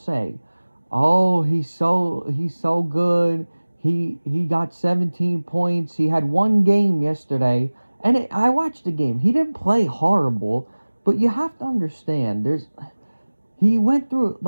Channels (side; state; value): both; inverted; correlation -1.00